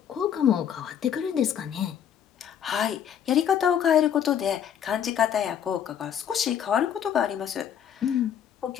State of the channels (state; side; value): quieter; right; 9.0 dB